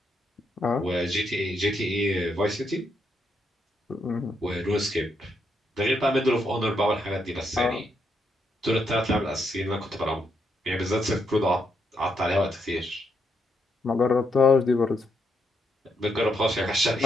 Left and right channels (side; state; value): both; normal; correlation 0.78